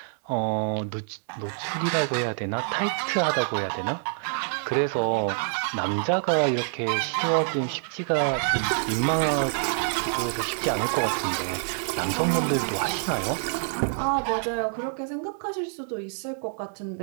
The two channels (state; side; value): silent; left; digital silence